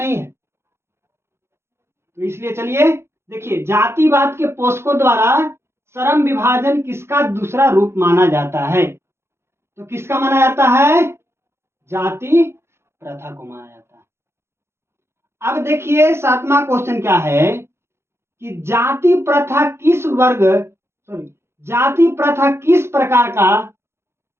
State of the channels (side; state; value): left; late; 0.12 ms